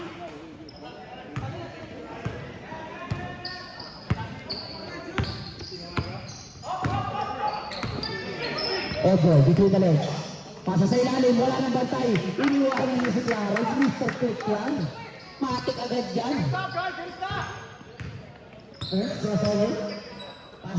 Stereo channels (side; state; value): both; identical; correlation 1.00